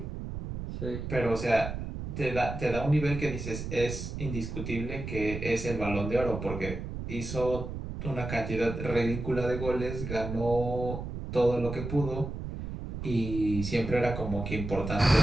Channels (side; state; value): right; noise; rumble, 6 dB below the sound